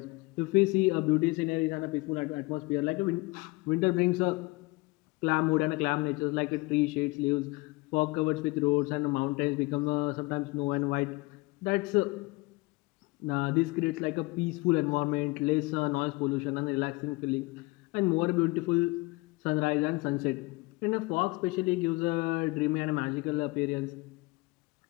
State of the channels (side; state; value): right; quieter; 24.2 dB